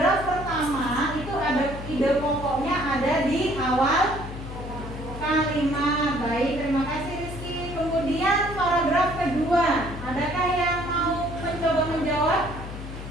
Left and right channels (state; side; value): noise; left; hum, 10 dB below the sound